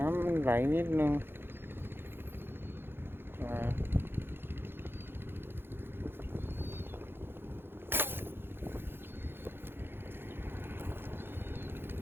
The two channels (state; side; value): late; left; 0.10 ms